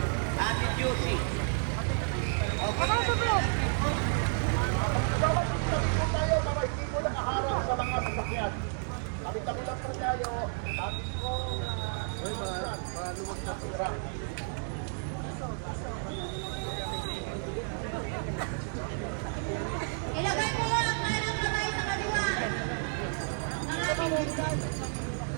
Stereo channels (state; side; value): silent; left; 57 dB below the other